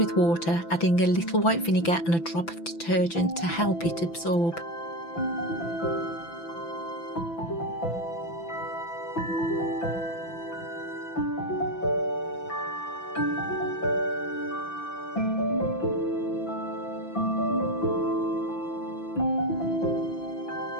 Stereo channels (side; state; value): right; late; 5.9 ms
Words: water, adding a little white vinegar and a drop of detergent to help it absorb.